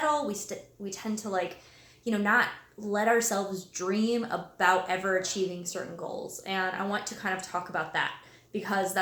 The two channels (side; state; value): both; identical; correlation 1.00